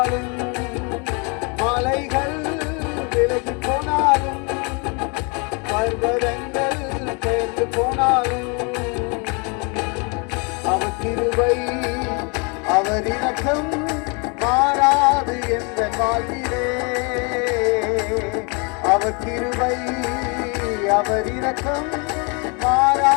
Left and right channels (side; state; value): right; quieter; 32.9 dB